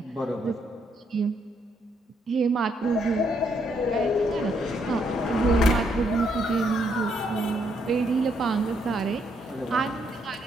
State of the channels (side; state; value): both; normal; correlation 0.74